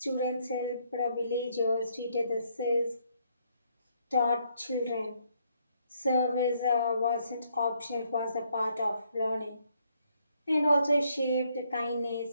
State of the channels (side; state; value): both; inverted; correlation -0.72